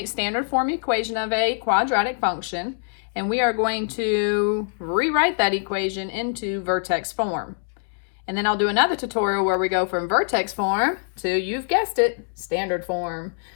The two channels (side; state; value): right; silent; digital silence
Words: standard form equation of a quadratic function, and we are going to rewrite that equation into Vertex form. And then I'll do another tutorial where we go from Vertex form to, you've guessed it, standard form.